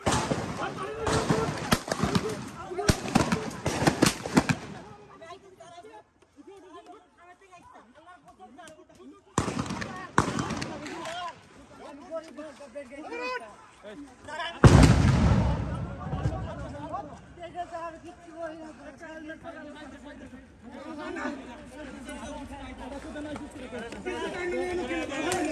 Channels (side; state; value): both; identical; correlation 1.00